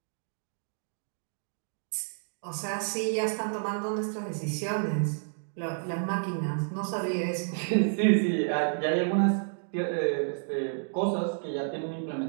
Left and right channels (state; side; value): silent; left; digital silence